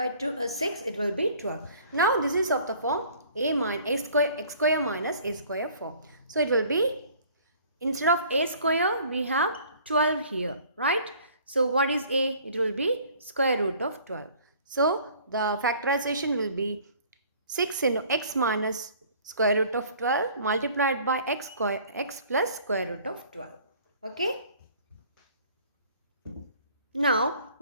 6, it will be 12. Now this is of the form x square minus a square form. So it will be, instead of a square we have 12 here. Right? So what is a? It will be square root of 12. So the factorization will be 6 into x minus square root of 12 multiplied by x plus square root of 12. Okay. Now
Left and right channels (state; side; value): inverted; both; correlation -0.53